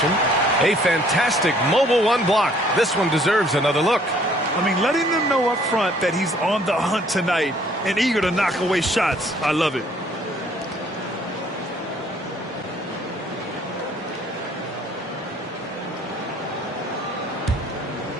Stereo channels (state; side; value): normal; both; correlation 0.60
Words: A fantastic mobile one block. This one deserves another look. I mean, letting them know up front that he's on the hunt tonight and eager to knock away shots. I love it.